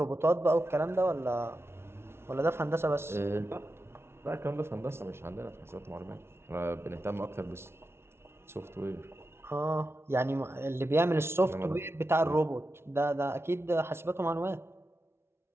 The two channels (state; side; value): late; left; 0.12 ms